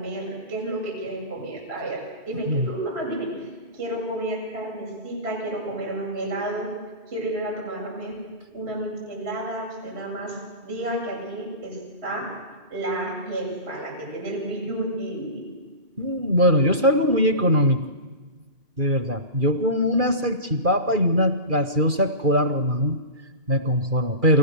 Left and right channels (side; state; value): left; late; 2.4 ms